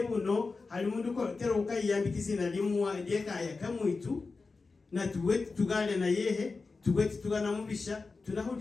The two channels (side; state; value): right; quieter; 4.1 dB